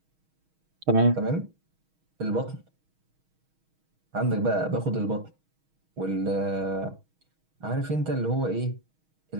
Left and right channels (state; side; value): late; left; 6.3 ms